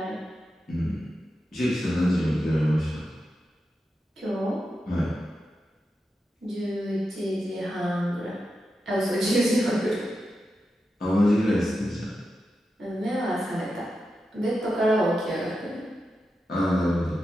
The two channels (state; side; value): normal; both; correlation 0.89